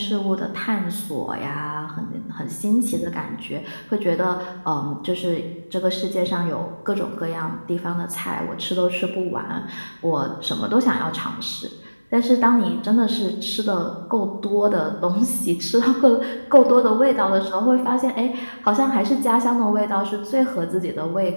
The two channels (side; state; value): both; inverted; correlation -1.00